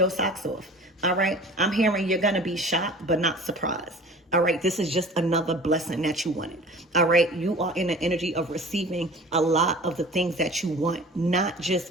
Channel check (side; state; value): both; normal; correlation 0.43